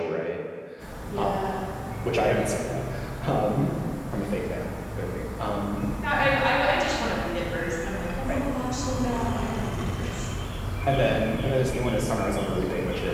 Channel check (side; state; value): both; identical; correlation 1.00